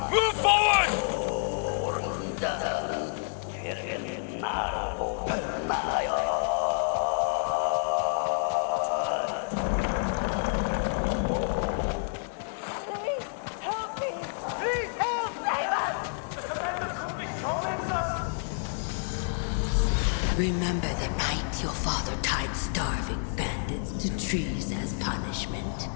Move forward! Please, help me! Please, help! Save us! Remember the night your father tied starving bandits to trees as punishment?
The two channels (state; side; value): silent; right; digital silence